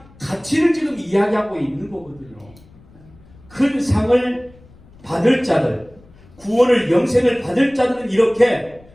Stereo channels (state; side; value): noise; left; rumble, 26 dB below the sound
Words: 가치를 지금 이야기하고 있는 거거든요. 큰 상을 받을 자들, 구원을, 영생을 받을 자들은 이렇게